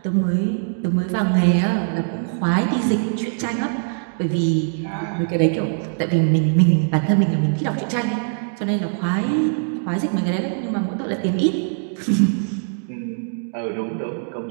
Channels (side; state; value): left; silent; digital silence